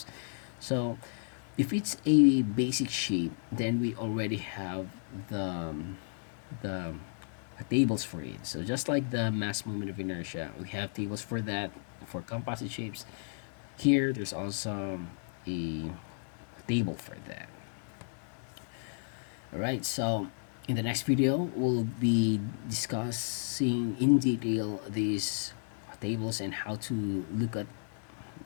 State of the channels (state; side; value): silent; right; digital silence